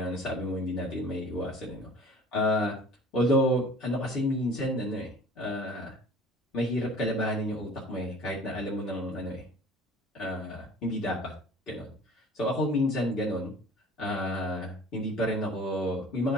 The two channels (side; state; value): both; normal; correlation 0.47